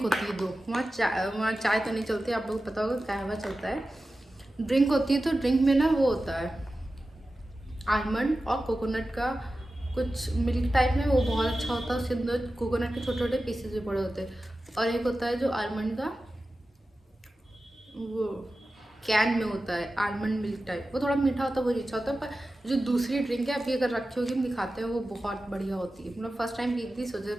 होती है दो, वहाँ चाय तो नहीं चलती, आप लोगों को पता होगा कहवा चलता है। ड्रिंक होती है, तो ड्रिंक में ना वो होता है आलमंड और कोकोनट का कुछ मिल्क टाइप में, वो बहुत अच्छा होता है। उसके अंदर कोकोनट के छोटे छोटे पीसेस भी पड़े होते हैं। और एक होता है जो आलमंड का, वो कैन में होता है आलमंड मिल्क टाइप, वो थोड़ा मीठा होता है, वो अच्छा होता है। पर जो दूसरी ड्रिंक है अभी अगर रखी होगी हम दिखाते हैं, वो बहुत बढ़िया होती है। मतलब फर्स्ट टाइम पी थी, सोचा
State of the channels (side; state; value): both; normal; correlation 0.94